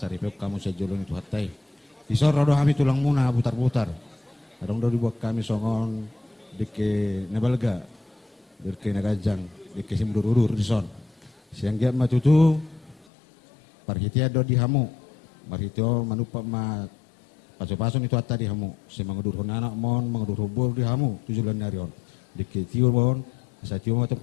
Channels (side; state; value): right; drops out; at 13.1 s